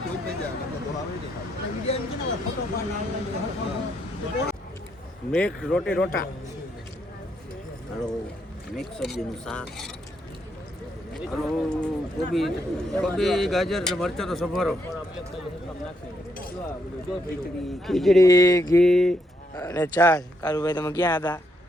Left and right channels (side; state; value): both; normal; correlation 0.76